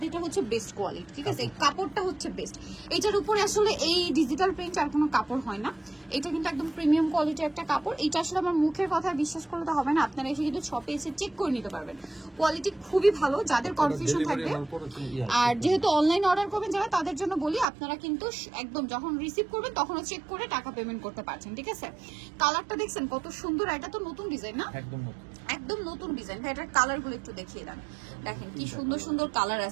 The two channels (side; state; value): left; drops out; at 17.7 s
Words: হচ্ছে বেস্ট কোয়ালিটি, ঠিক আছে? এই কাপড়টা হচ্ছে বেস্ট, এইটার উপরে আসলে এই ডিজিটাল প্রিন্ট আর কোনো কাপড় হয় না। এটা কিন্তু একদম প্রিমিয়াম কোয়ালিটির একটা কাপড়। এটা আসলে আমার মুখের কথা বিশ্বাস করলে তো হবে না, আপনারা এসে কিন্তু শপে এসে চেক করে নিতে পারবেন। কোয়ালিটি খুবই ভালো, যাদের কনফিউশন থাকবে। আর যেহেতু অনলাইন অর্ডার করবেন যারা, তাদের জন্য বলি আপনারা কিন্তু একদম যখন রিসিভ করবেন তখনও চেক করে টাকা পেমেন্ট করতে পারছেন, ঠিক আছে? কালারটা দেখছেন কত সুন্দর, এটা তো নতুন ডিজাইন না? একদম নতুন ডিজাইন। ভাই এটার কালারগুলো একটু দেখিয়ে দেন, দেখেন কি সুন্দর সুন্দর কালার